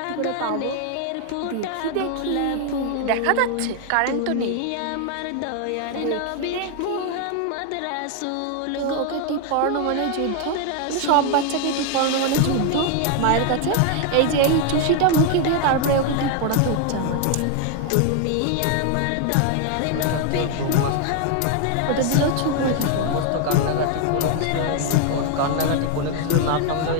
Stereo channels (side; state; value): both; different; correlation 0.00